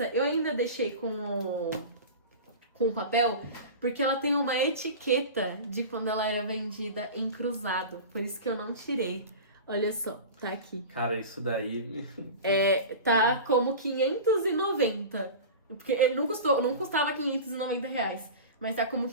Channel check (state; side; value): inverted; both; correlation -0.31